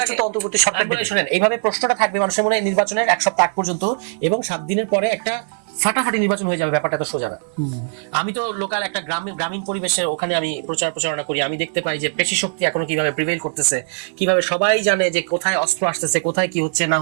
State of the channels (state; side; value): silent; left; digital silence